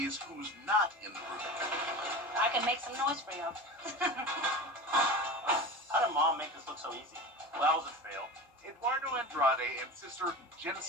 who's not in the room. I can make some noise for you. How did Mom make this look so easy? Well, that was a fail. Eduardo Andrade and sister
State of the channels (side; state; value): both; normal; correlation 0.30